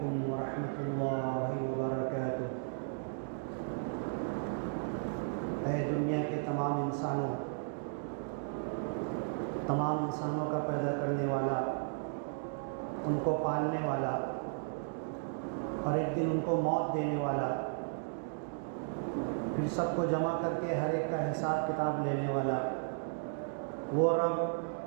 ورحمۃ اللہ وبرکاتہ۔ اے دنیا کے تمام انسانوں کا پیدا کرنے والا، ان کو پالنے والا اور ایک دن ان کو موت دینے والا، پھر سب کو جمع کر کے ہر ایک کا حساب کتاب لینے والا، وہ رب،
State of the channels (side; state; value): left; silent; digital silence